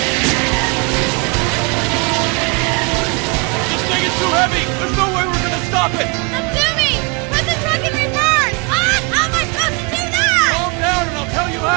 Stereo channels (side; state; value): left; quieter; 30.5 dB